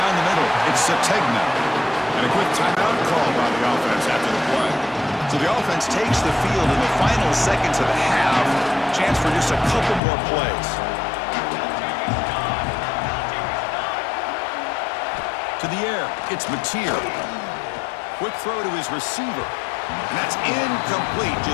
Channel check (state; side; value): drops out; right; at 10.0 s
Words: the middle. It's Sategna. And a quick timeout call by the offense after the play. So the offense takes the field in the final seconds of the half. Chance for just a couple more plays. To the air. It's Mateer. Quick throw to his receiver. And that's incomplete.